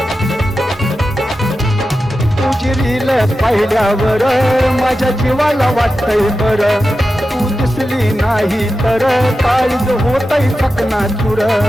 तुझी रील पाहिल्यावर माझ्या जीवाला वाटतंय बरं, तू दिसली नाही तर काळीज होतय चकनाचूर.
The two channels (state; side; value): normal; both; correlation 0.92